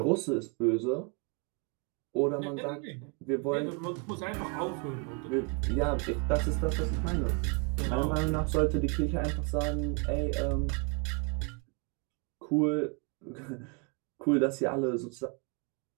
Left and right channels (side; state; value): left; quieter; 33.9 dB